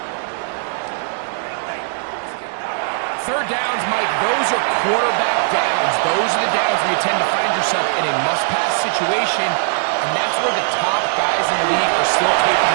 third downs, Mike, those are quarterback downs. Those are the downs where you tend to find yourself in a must-pass situation, and that's where the top guys in the league are still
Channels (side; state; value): left; silent; digital silence